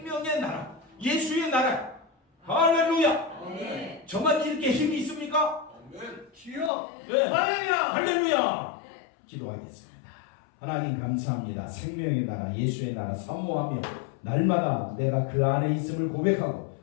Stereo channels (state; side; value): drops out; right; at 6.7 s